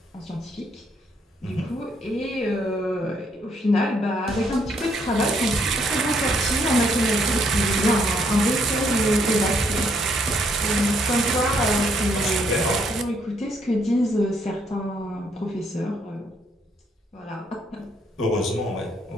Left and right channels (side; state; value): both; normal; correlation 0.71